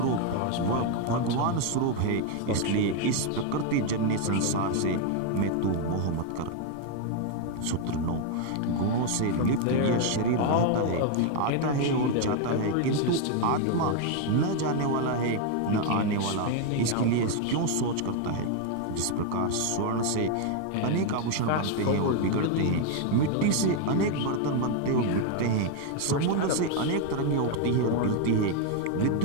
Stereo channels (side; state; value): both; different; correlation 0.01